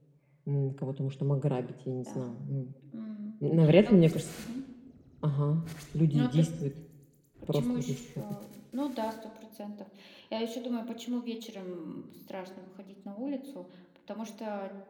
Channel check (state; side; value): identical; both; correlation 1.00